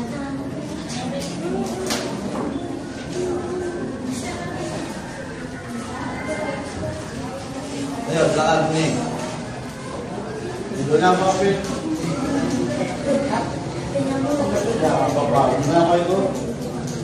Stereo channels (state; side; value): noise; right; rumble, 26 dB below the sound